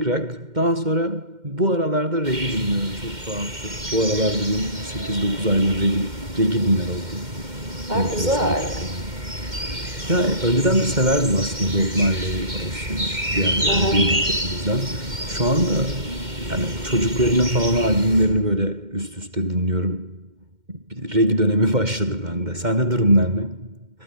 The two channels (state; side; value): late; left; 2.1 ms